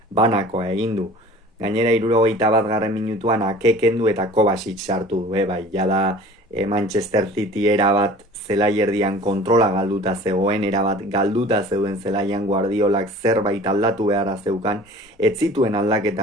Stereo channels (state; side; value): normal; both; correlation 0.45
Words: banakoa egin du. Gainera 61. minutuan Ake kendu eta Kovacic sartu du, bai, jada Manchester City erabat zelaierdian kontrola galduta zegoen, erabat galduta zeuden zelaian Guardiolak zerbait aldatu beharra zeukan, ez zituen